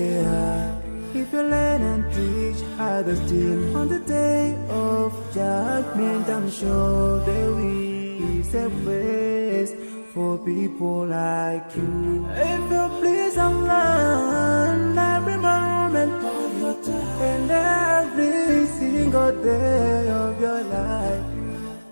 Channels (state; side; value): inverted; both; correlation -1.00